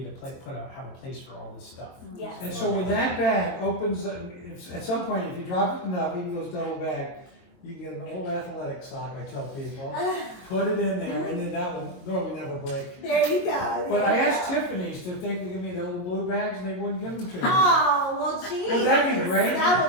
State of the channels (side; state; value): right; late; 23 ms